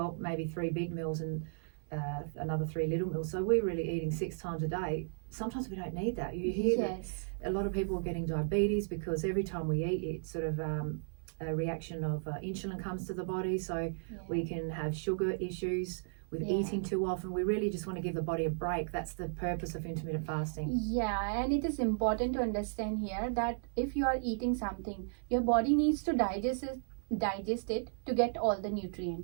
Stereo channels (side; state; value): left; silent; digital silence